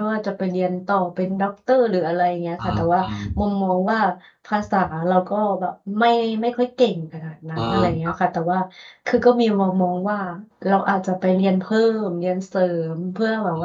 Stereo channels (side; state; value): both; identical; correlation 1.00